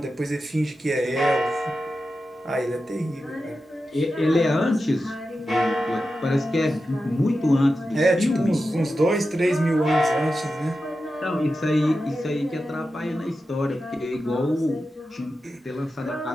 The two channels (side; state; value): both; normal; correlation 0.91